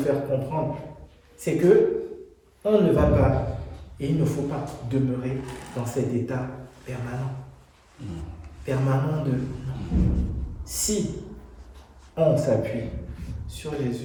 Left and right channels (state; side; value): identical; both; correlation 1.00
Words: comprendre, c'est que on ne va pas, et il ne faut pas demeurer dans cet état permanent. Permanent de... Si on s'appuie sur